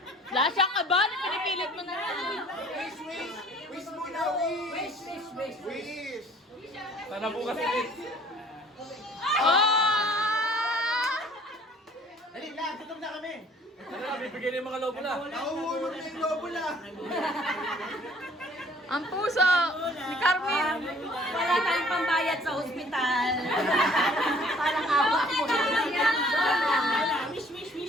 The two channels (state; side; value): normal; both; correlation 0.55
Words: Lahat siyang kaba, pinipilit mo na. Wish muna, wish. Sana bukas ulit. Dali lang, tutok na kami. Ano na, bibigyan yung mga lobo na. Nauulog na yung lobo na. Ang puso ni Carmen. Wala tayong pambayad sa ospital. Parang awa ko.